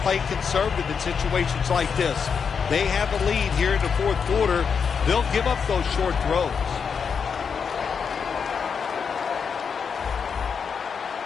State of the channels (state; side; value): quieter; right; 6.3 dB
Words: play conservative in situations like this. They have a lead here in the fourth quarter. They'll give up those short throws.